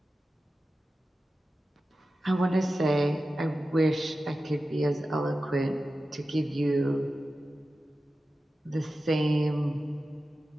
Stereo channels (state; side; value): normal; both; correlation 0.94